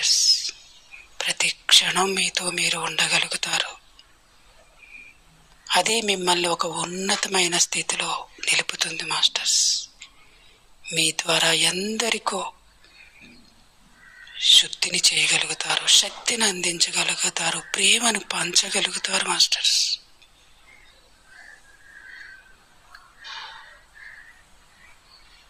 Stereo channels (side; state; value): both; identical; correlation 1.00